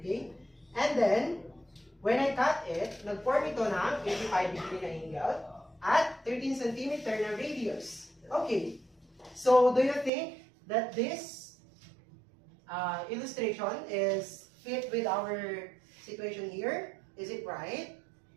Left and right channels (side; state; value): left; drops out; at 10.1 s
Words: And then, when I cut it, nag-form ito ng 85 degree na angle at 13 centimeter na radius. Okay. So, do you think that this illustration is fit with our situation here? Is it right?